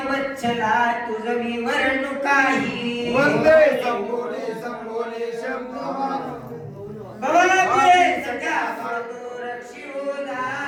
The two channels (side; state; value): both; identical; correlation 1.00